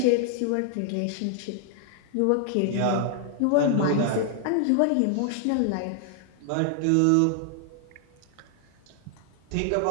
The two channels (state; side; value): different; both; correlation 0.00